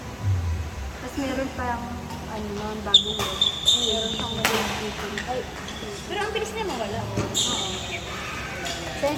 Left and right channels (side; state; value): both; identical; correlation 1.00